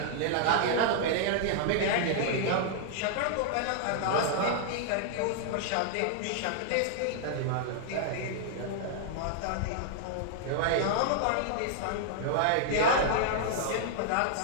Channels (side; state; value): both; different; correlation -0.01